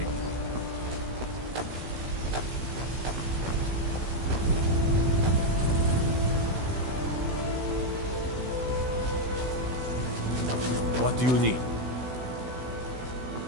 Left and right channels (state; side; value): late; left; 16 ms